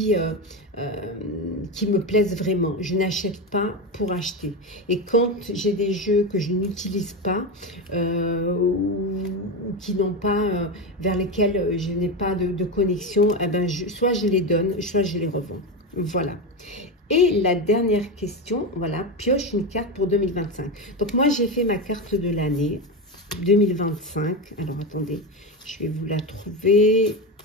me plaisent vraiment. Je n'achète pas pour acheter. Et quand j'ai des jeux que je n'utilise pas ou qui n'ont pas, vers lesquels je n'ai pas de connexion, eh ben soit je les donne, soit je les revends. Voilà. Et la dernière question, voilà, pioche une carte pour 2025. Donc moi, j'ai fait ma carte de l'année. 2025. Alors, attendez, je vais vous la trouver.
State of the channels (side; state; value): both; normal; correlation 0.16